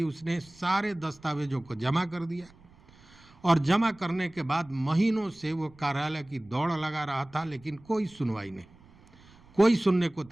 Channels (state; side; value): noise; right; rumble, 26 dB below the sound